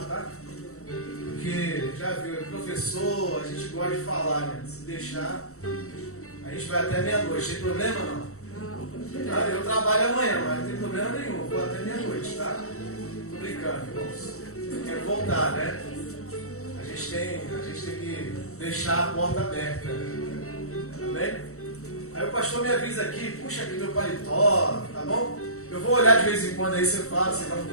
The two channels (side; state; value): right; late; 0.64 ms